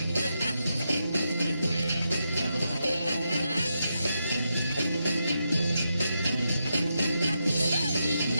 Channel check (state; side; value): inverted; both; correlation -0.84